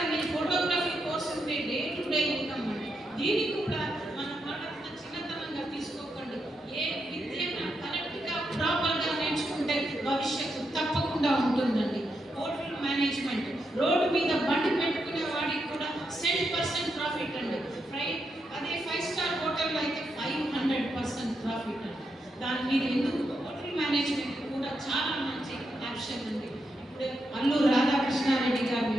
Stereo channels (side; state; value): both; normal; correlation 0.83